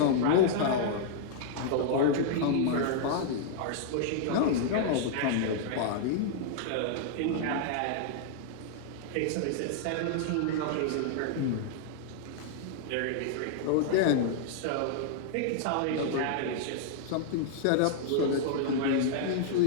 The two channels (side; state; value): both; different; correlation -0.01